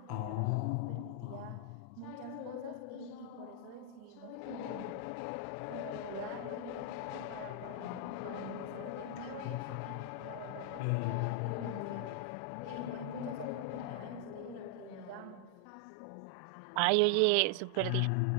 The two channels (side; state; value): both; different; correlation 0.00